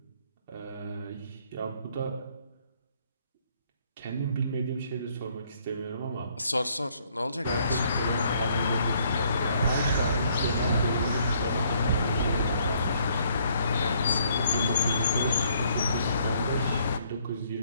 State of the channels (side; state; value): both; inverted; correlation -0.66